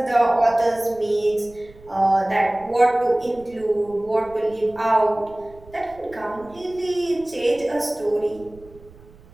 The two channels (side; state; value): right; noise; rumble, 23 dB below the sound